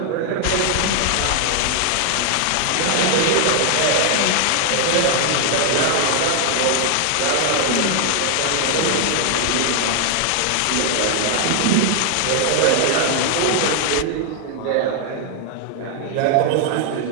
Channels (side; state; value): both; different; correlation 0.00